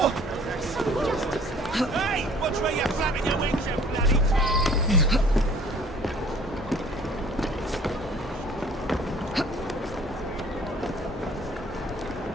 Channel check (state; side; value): normal; both; correlation 0.52